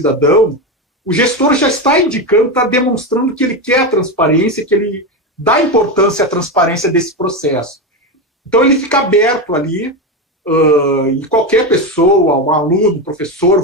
o gestor já está indicando, está demonstrando que ele quer a transparência, que ele dá importância à transparência desse processo. Então ele fica aberto ali, e qualquer pessoa, um aluno, um professor,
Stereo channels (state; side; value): normal; both; correlation 0.14